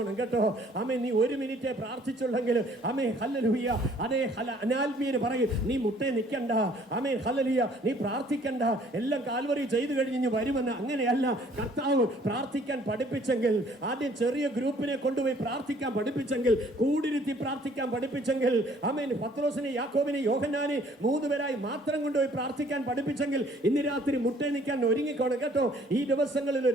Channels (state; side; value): normal; both; correlation 0.58